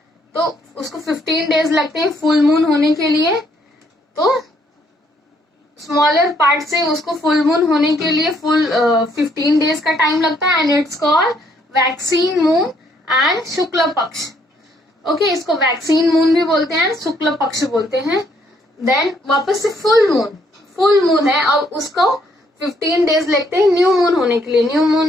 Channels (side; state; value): both; normal; correlation 0.69